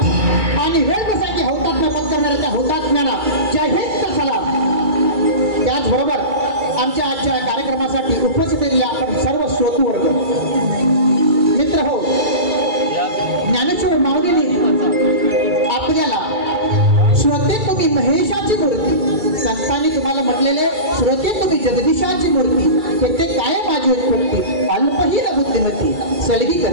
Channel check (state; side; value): late; left; 2.3 ms